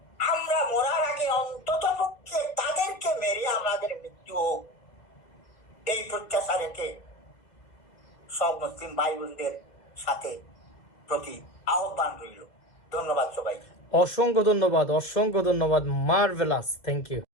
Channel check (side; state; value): right; late; 2.3 ms